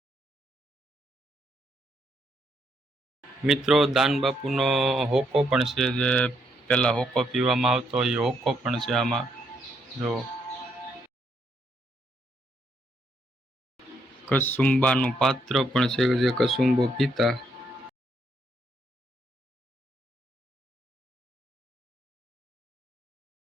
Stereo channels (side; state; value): both; normal; correlation 0.75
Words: મિત્રો, દાનબાપુનો હોકો પણ છે, જે પેલા હોકો પીવામાં આવતો એ હોકો પણ છે આમાં. જો કસુંબાનું પાત્ર પણ છે, જે કસુંબો પીતા.